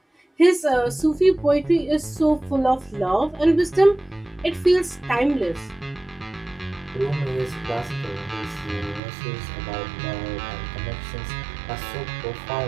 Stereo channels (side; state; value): left; drops out; at 9.0 s